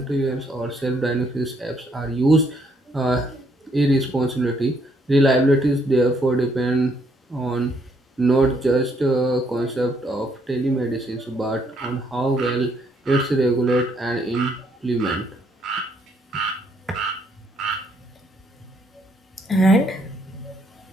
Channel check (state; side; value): normal; both; correlation 0.70